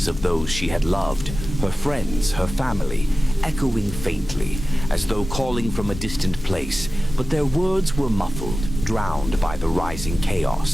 of those she had loved, her friends, her family, echoing faintly, as though calling from a distant place, but their words were muffled, drowned by the rising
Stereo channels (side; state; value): both; normal; correlation 0.95